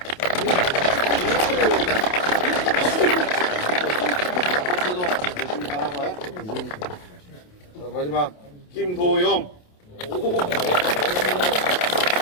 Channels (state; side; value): late; right; 28 ms